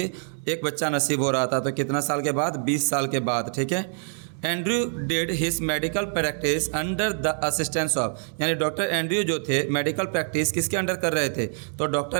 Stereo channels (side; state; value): left; silent; 59 dB below the other